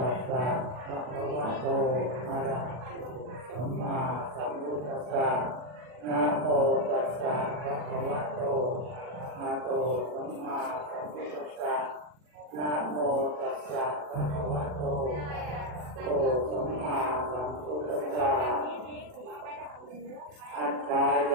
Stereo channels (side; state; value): left; late; 40 ms